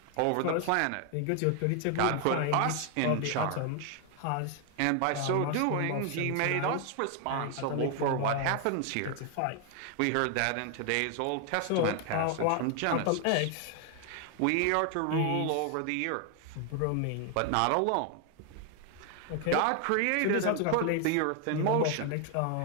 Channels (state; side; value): different; both; correlation 0.00